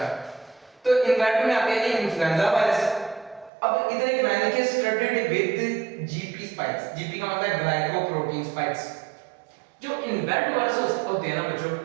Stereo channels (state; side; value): drops out; left; at 3.5 s